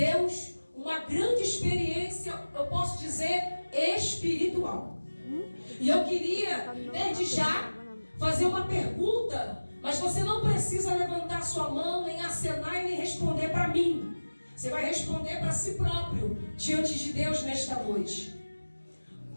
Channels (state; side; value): inverted; both; correlation -1.00